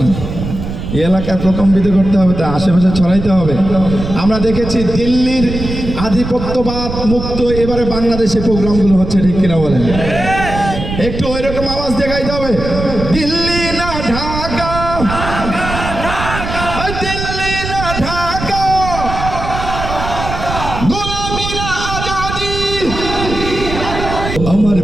না, এই এলাকায় প্রকম্পিত করতে হবে, তা আশেপাশে ছড়াইতে হবে। আমরা দেখেছি দিল্লির আধিপত্যবাদ মুক্ত এবারে বাংলাদেশে প্রোগ্রামগুলো হচ্ছে, ঠিক কিনা বলেন? একটু ওই রকম আওয়াজ দেখাইতে হবে। দিল্লি না ঢাকা, দিল্লি না ঢাকা, গোলামি না আজাদি, আমার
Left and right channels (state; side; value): noise; right; rumble, 6 dB below the sound